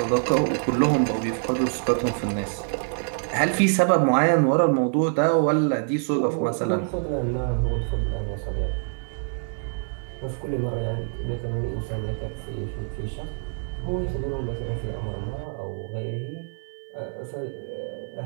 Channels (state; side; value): silent; left; 61 dB below the other